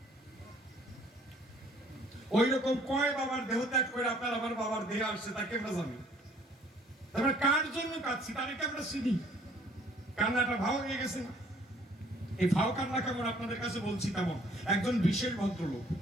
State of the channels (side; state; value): both; normal; correlation 0.59